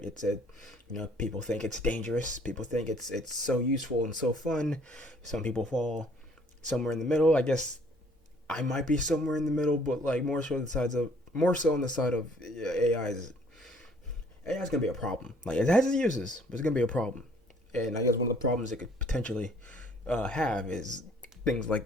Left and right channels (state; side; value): normal; both; correlation 0.59